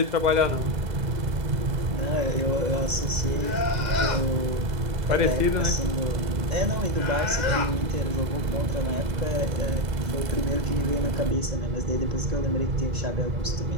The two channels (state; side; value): late; left; 2.0 ms